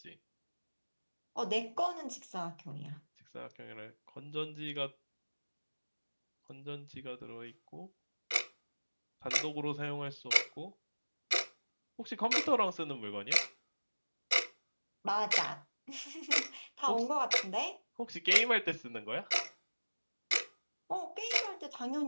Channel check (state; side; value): inverted; both; correlation -1.00